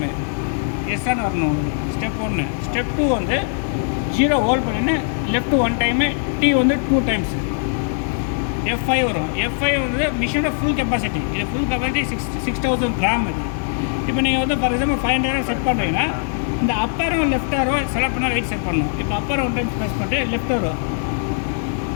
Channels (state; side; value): silent; right; digital silence